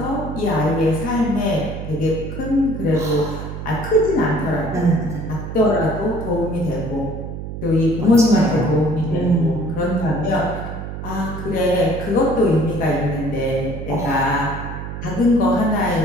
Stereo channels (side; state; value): right; noise; hum, 8 dB below the sound